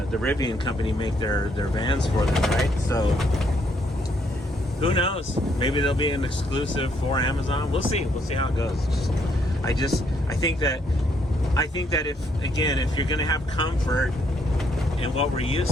the Rivian company make their vans for them, right? So who knows? Maybe there'll be an exclusive for Amazon. We'll see. We'll see how it goes. I think that if you're going to have comfort and what we're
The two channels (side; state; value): both; normal; correlation 0.71